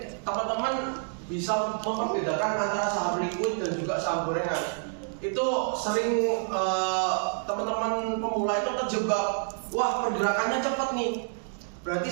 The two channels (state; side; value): silent; left; digital silence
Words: teman-teman bisa membedakan antara saham liquid dan juga saham gorengan. Itu sering teman-teman pemula itu terjebak, wah pergerakannya cepat nih, berarti